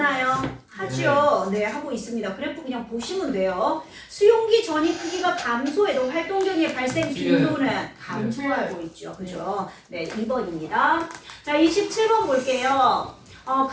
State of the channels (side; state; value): both; identical; correlation 1.00